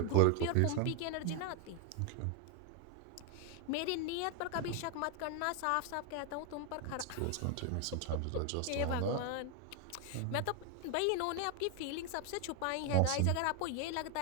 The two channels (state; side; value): different; both; correlation 0.01